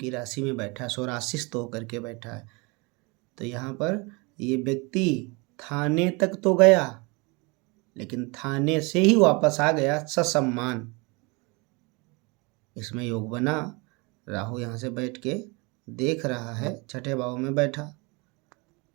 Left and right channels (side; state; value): left; quieter; 28.4 dB